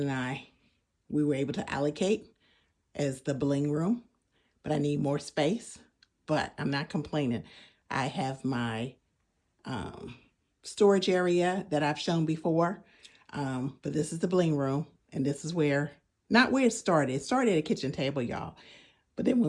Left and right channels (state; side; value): identical; both; correlation 1.00